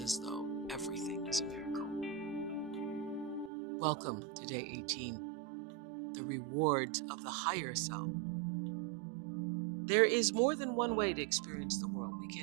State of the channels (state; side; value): drops out; left; at 3.5 s